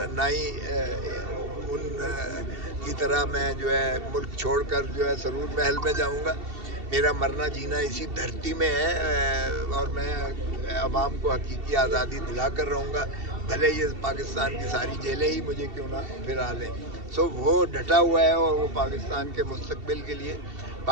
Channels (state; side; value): late; left; 2.7 ms